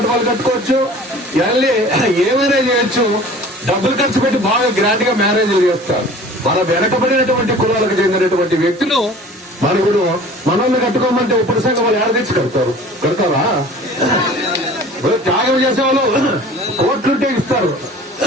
కట్టుకోవచ్చు, ఏమైనా చేయొచ్చు, డబ్బులు ఖర్చు పెట్టి బాగా గ్రాండ్ గా మ్యారేజ్లు చేస్తారు. మన వెనకబడినటువంటి కులాలకు చెందినటువంటి వ్యక్తులు మనకుడు మనల్ని కట్టుకోమంటే ఇప్పుడు సంఘం వాళ్ళు ఏడ తెచ్చి కడతారా? త్యాగం చేసేవాళ్ళు కోట్లుంటే ఇస్తారు.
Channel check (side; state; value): both; normal; correlation 0.45